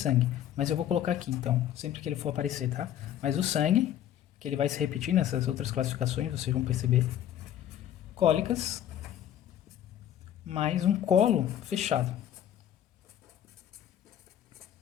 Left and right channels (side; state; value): right; quieter; 11.0 dB